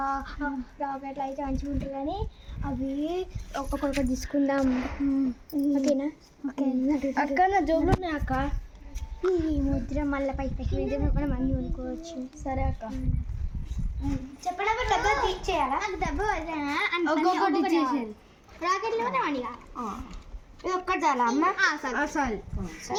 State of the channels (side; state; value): both; identical; correlation 1.00